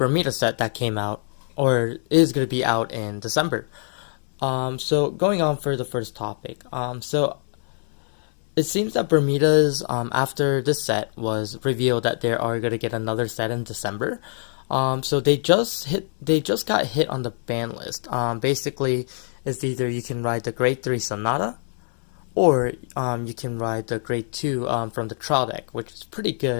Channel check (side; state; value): right; silent; 63 dB below the other